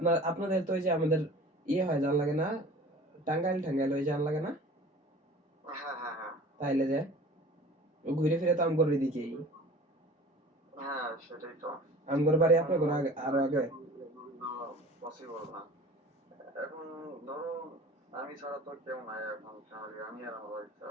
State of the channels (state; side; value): normal; both; correlation 0.43